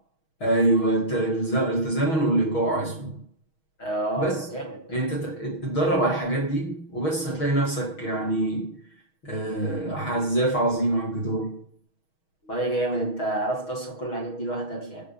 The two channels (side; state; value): right; late; 6.3 ms